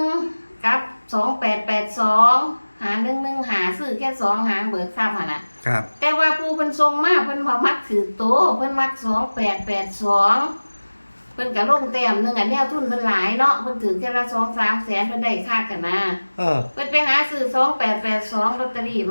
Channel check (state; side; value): inverted; both; correlation -1.00